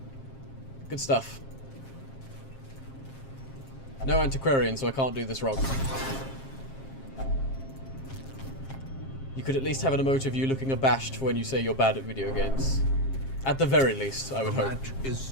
Good stuff. No antiquarian, so I can't do this wrong. You could at least have an emote of you looking abashed for when you say you're bad at video games. At the very least, I would hope. The match is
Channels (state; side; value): late; right; 7.5 ms